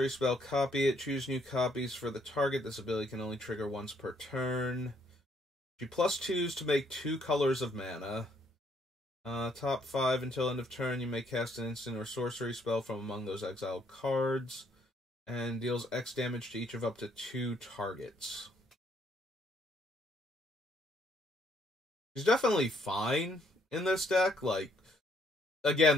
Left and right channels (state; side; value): normal; both; correlation 0.69